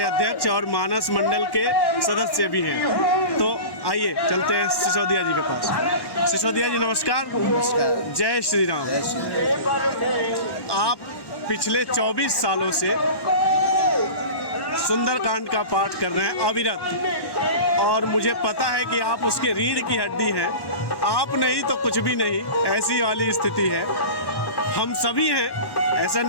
अध्यक्ष और मानस मंडल के सदस्य भी हैं। तो आइए चलते हैं सिसोदिया जी के पास। सिसोदिया जी नमस्कार। नमस्कार। जय श्री राम। जय श्री राम। आप पिछले 24 सालों से सुंदरकांड का पाठ कर रहे हैं अविरत, और मुझे पता है कि आप उसके रीढ़ की हड्डी हैं। आप नहीं तो कुछ भी नहीं, ऐसी वाली स्थिति है। हम सभी हैं, ऐसा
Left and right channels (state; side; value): late; right; 1.1 ms